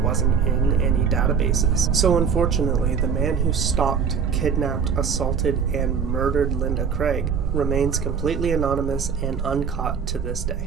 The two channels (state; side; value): quieter; left; 6.5 dB